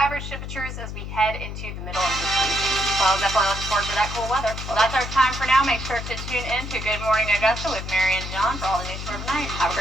temperatures as we head into the middle of this week. Well, definitely looking forward to that cool weather. Well, that's our time for now. Make sure to tune in to Good Morning Augusta with Mary and John for all the news for tonight. Have a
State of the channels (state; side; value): noise; left; hum, 7 dB below the sound